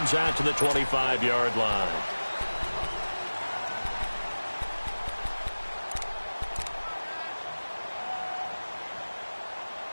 out to the 25-yard line.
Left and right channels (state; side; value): inverted; both; correlation -1.00